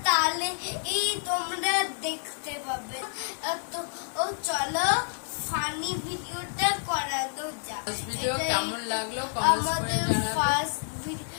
তাহলে তোমরা দেখতে পাবে। তো চলো ফানি ভিডিওটা করানো যাক। ভিডিও কেমন লাগলো আমাদের ফার্স্ট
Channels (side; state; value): right; silent; digital silence